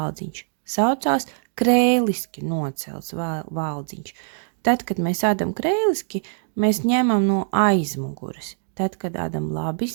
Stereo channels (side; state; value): left; silent; digital silence